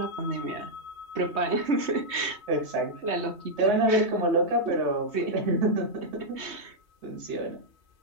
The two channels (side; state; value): left; late; 3.2 ms